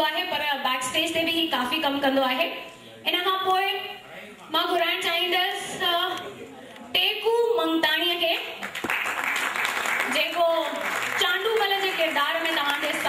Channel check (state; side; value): identical; both; correlation 1.00